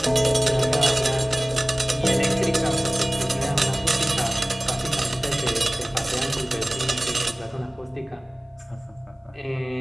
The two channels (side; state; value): both; normal; correlation 0.98